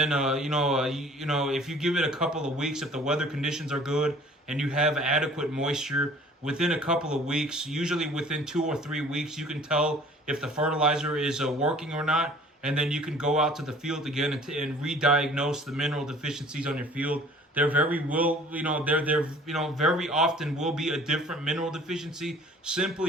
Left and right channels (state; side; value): normal; both; correlation 0.51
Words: if you give it a couple of weeks, if the weather conditions are good and you have adequate moisture, within a couple of weeks, usually within 2 or 3 weeks, you can tell if the fertilizer is working or not. And then you can go out to the field again and re-diagnose the mineral deficiencies on your field. There very often will be a different mineral deficiency,